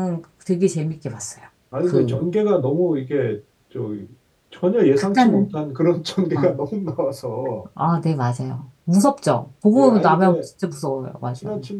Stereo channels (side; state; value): both; identical; correlation 1.00